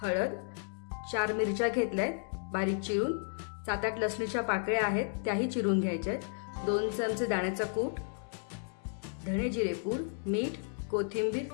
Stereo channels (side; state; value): right; silent; digital silence